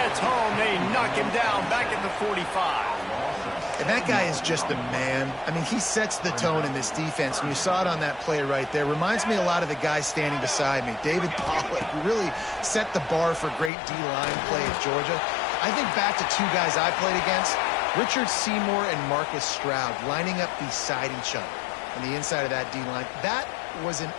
home. They knock him down back at the 45. And that guy is just a man. I mean, he sets the tone in this defense, and you saw it on that play right there. Reminds me a lot of the guy standing beside me, David Pollack, who really set the bar for great D-line play at Georgia. I think back to 2 guys I played against, Richard Seymour and Marcus Stroud, lining up beside each other on the inside of that D-line. That was an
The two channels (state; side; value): drops out; right; at 13.7 s